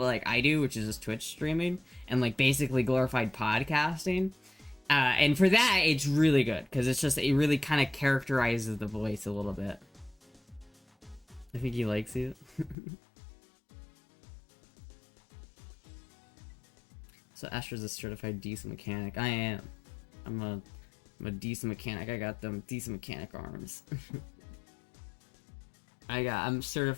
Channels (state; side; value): drops out; right; at 12.8 s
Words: like I do, which is just Twitch streaming and like basically glorified podcasting. And for that, it's really good because it really kind of characterizes the voice a little bit. I think he likes it. So Astra's a certified decent mechanic. I am. I'm a decent mechanic. I got them decent mechanic arms. I'm